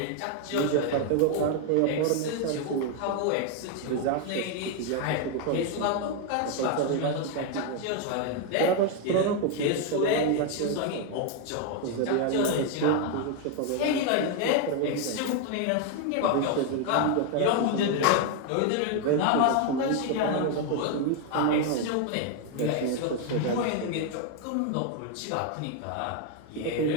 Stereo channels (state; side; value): different; both; correlation 0.01